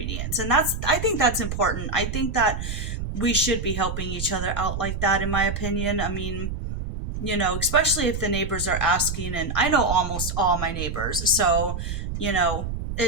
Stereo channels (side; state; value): right; noise; rumble, 5 dB below the sound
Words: And I think that's important. I think that we should be helping each other out like that, in my opinion. I mean, especially if the neighbors are asking, and I know almost all my neighbors. So,